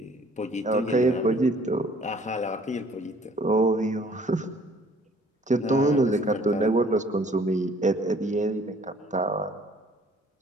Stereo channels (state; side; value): normal; both; correlation 0.57